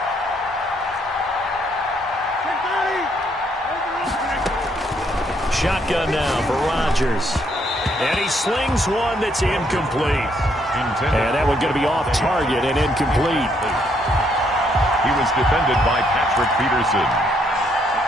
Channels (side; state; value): both; normal; correlation 0.71